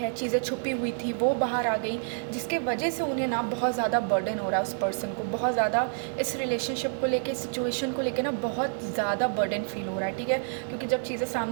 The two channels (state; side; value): silent; left; digital silence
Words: चीज़ें छुपी हुई थी, वो बाहर आ गई, जिसके वजह से उन्हें ना बहुत ज़्यादा बर्डन हो रहा है. उस पर्सन को बहुत ज़्यादा इस रिलेशनशिप को लेके, सिचुएशन को लेके ना बहुत ज़्यादा बर्डन फील हो रहा है. ठीक है, क्योंकि जब चीज़ें